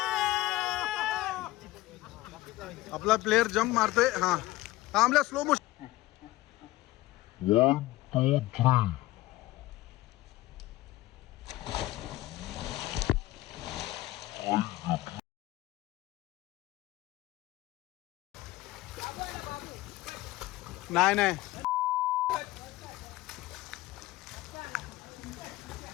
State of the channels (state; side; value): quieter; right; 17.6 dB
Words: आपला प्लेयर जंप मारतोय हा आमल्या स्लो मोशन 1 2 3 नाही नाही